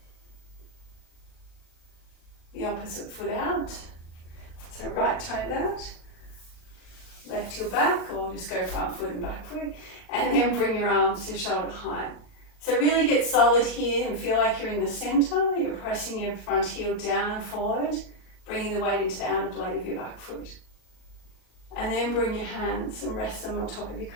the opposite foot out. So right toe out, left heel back, or just go front foot and back foot, and then bring your arms to shoulder height. So really get solid here and feel like you're in the center. You're pressing your front heel down and forward, bringing the weight into the outer blade of your back foot. And then bring your hands and rest them on top of your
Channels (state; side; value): late; right; 38 ms